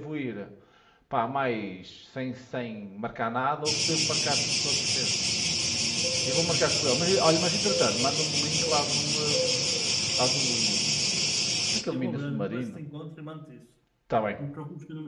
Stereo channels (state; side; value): identical; both; correlation 1.00